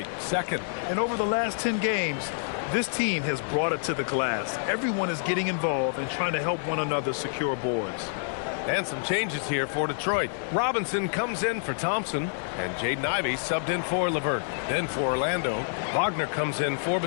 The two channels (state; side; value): silent; right; digital silence